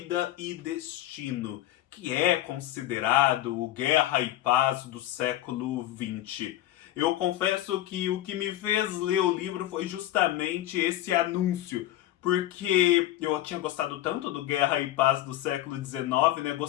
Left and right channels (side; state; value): right; quieter; 14.1 dB